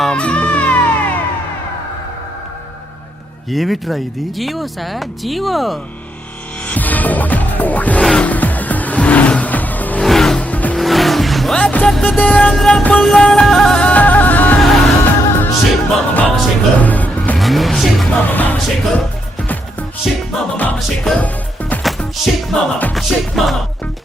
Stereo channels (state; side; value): normal; both; correlation 0.79